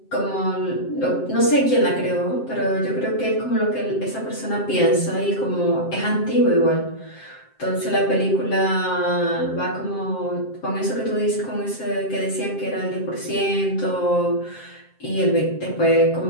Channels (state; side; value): late; right; 7.6 ms